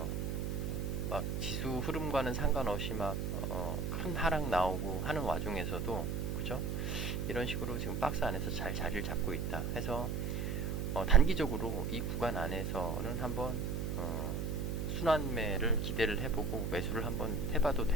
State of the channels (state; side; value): noise; right; hum, 1 dB below the sound